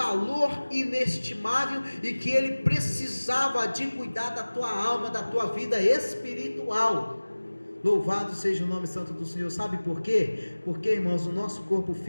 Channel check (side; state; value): both; inverted; correlation -1.00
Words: inestimável, e que ele precisava de cuidar da tua alma, da tua vida espiritual. Louvado seja o nome santo do Senhor. Sabe por quê? Porque, irmãos, o nosso corpo